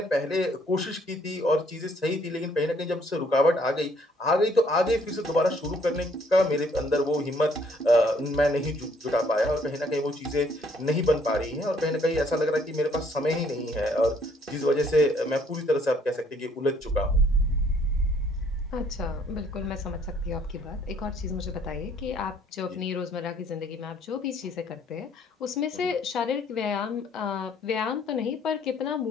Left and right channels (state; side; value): normal; both; correlation 0.63